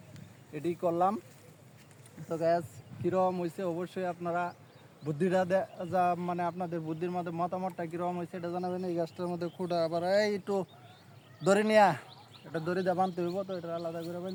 এটি করলাম। তো গ্যাস কীরকম হয়েছে অবশ্যই আপনারা বুদ্ধিটা যা মানে আপনাদের বুদ্ধির মধ্যে মতামতটা কীরকম হয়েছে এটা জানাবেন। এই গাছটার মধ্যে খুঁটা আবার এই একটু দড়ি নিয়া, এটা দড়ি দিয়ে বানতে হইব, তো এটা আলাদা করে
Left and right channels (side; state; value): both; identical; correlation 1.00